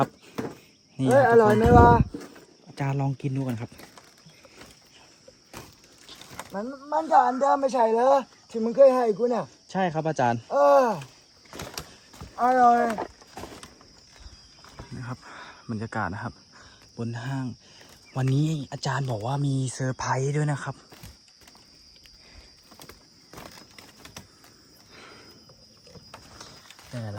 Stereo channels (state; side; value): identical; both; correlation 1.00